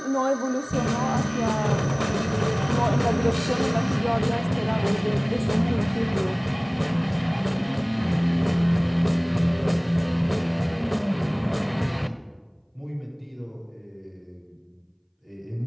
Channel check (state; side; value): identical; both; correlation 1.00